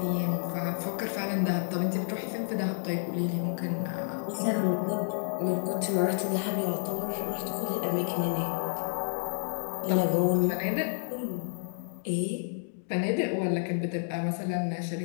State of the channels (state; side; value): silent; right; digital silence